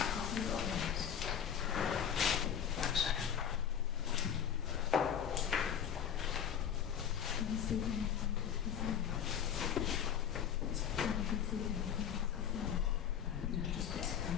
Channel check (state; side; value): quieter; right; 8.7 dB